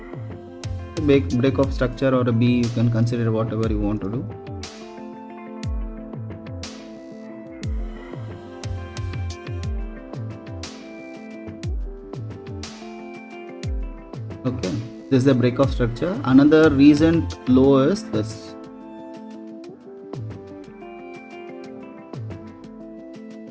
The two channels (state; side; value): identical; both; correlation 1.00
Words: break of structure, or a B, you can consider whatever you want to do. Okay, this is the break of structure. Another recent low is this.